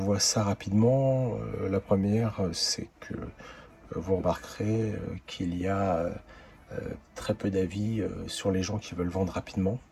ça rapidement? La première, c'est que vous remarquerez qu'il y a très peu d'avis sur les gens qui veulent vendre rapidement,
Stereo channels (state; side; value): identical; both; correlation 1.00